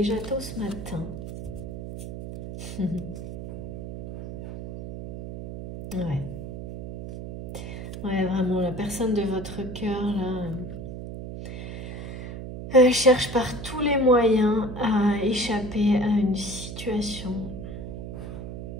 tôt ce matin. Ouais. Ouais, vraiment, la personne de votre cœur, là, cherche par tous les moyens à échapper à une situation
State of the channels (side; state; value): right; noise; hum, 8 dB below the sound